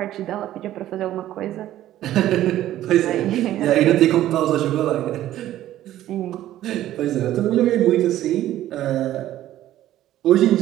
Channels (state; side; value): quieter; left; 13.4 dB